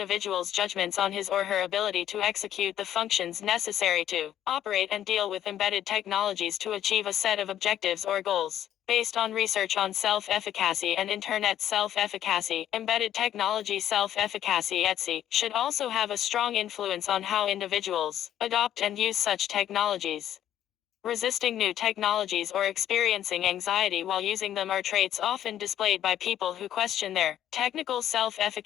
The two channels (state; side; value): quieter; right; 11.2 dB